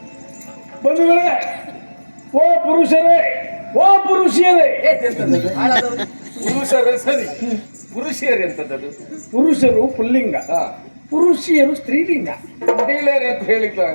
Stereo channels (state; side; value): inverted; both; correlation -1.00